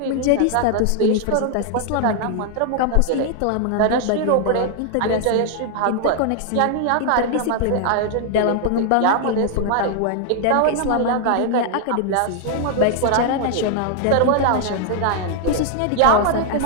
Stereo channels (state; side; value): different; both; correlation 0.00